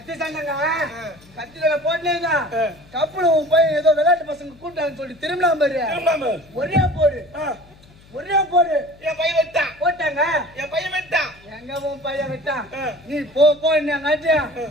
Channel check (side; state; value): left; noise; hum, 26 dB below the sound